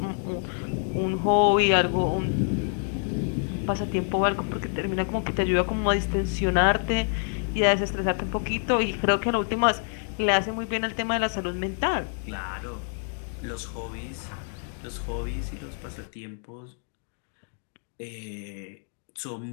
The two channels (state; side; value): silent; right; 57 dB below the other